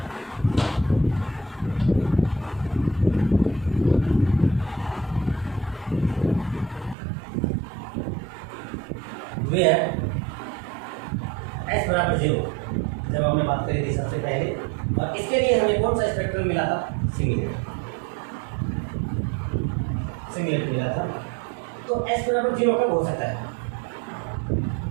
वेयर s = 0, जब हमने बात करी थी सबसे पहले, और इसके लिए हमें कौन सा स्पेक्ट्रम मिला था, सिंगलेट, सिंगलेट मिला था। तो s = 0 कब हो सकता है,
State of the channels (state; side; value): drops out; left; at 7.0 s